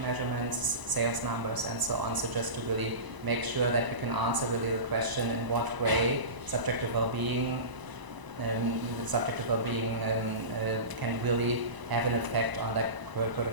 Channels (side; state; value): left; late; 1.0 ms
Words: sales numbers, and so on. So just to really make sure that we can answer really the question in what way subjective well-being can really have an effect on like